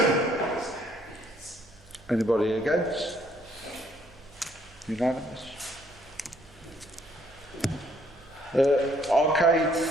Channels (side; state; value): both; normal; correlation 0.65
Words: Anybody against? Unanimous. Arcade